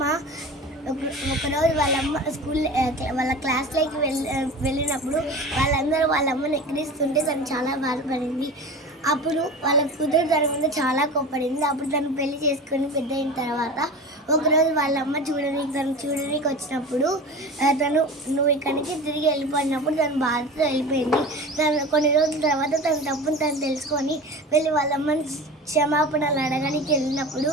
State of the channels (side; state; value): both; normal; correlation 0.33